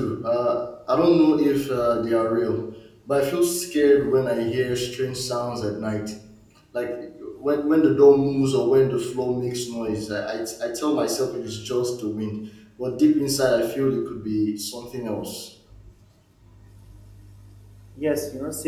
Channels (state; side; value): identical; both; correlation 1.00